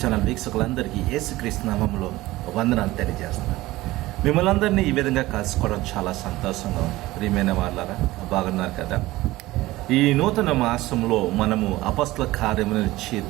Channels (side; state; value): left; quieter; 18.1 dB